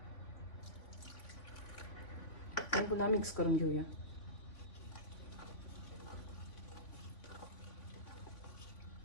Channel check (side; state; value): right; late; 3.5 ms